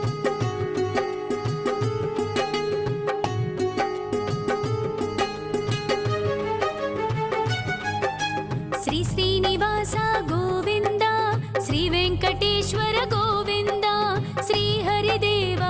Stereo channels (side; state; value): both; identical; correlation 1.00